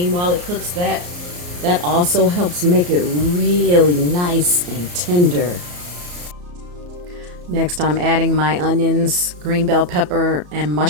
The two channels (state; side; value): late; left; 34 ms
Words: while it cooks. That also helps make it really nice and tender. Next, I'm adding my onions, green bell pepper, and